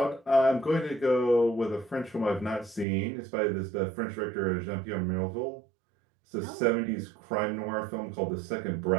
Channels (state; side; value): drops out; left; at 2.9 s